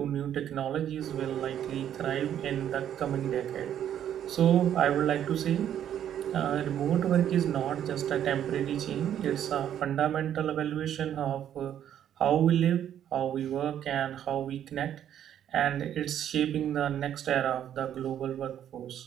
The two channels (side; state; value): left; quieter; 10.3 dB